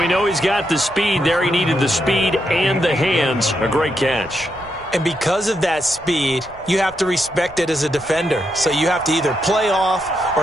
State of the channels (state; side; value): noise; right; rumble, 23 dB below the sound